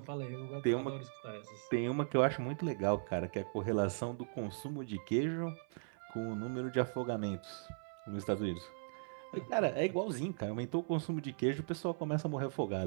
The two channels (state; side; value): silent; left; 52 dB below the other